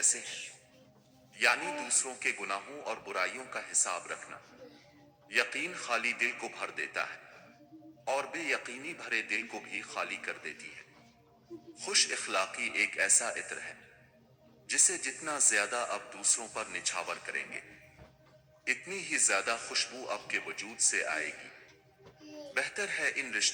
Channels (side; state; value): both; identical; correlation 1.00